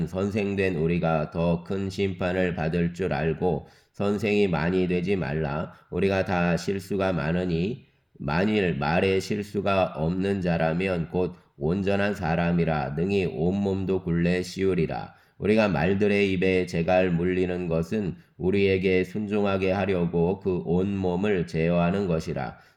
선생된 우리가 더 큰 심판을 받을 줄 알고 선생이 많이 되지 말라. 우리가 다 실수가 많으니 만일 말에 실수가 없는 자라면 곧 온전한 사람이라 능히 온몸도 굴레 씌우리라. 우리가 말들의 입에 재갈 물리는 것은 우리에게 순종하게 하려고 그 온몸을 제어하는 것이라.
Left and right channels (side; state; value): both; identical; correlation 1.00